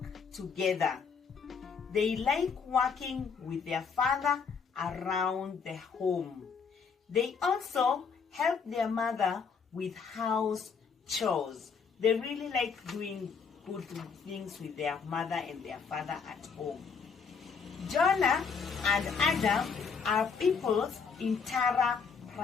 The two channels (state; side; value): quieter; right; 5.8 dB